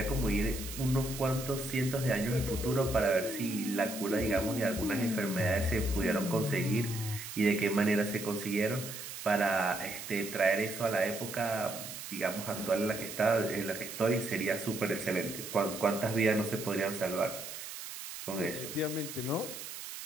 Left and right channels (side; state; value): right; noise; hiss, 9 dB below the sound